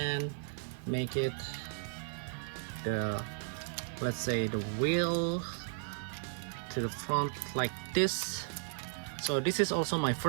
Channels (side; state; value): left; silent; 54 dB below the other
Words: make it the, let's say, the wheel to the front like this. So this is also my